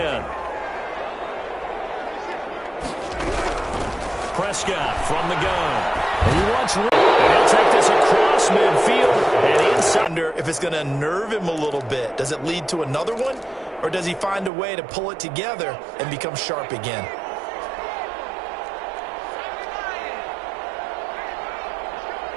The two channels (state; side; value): drops out; left; at 14.5 s